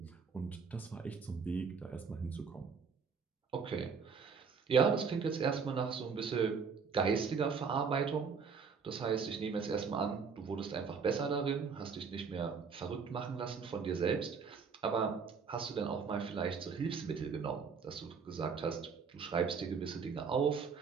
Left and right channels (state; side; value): quieter; left; 5.7 dB